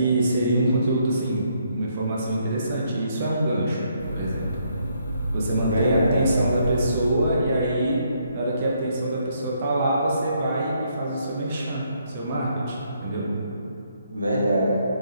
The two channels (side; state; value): both; inverted; correlation -0.72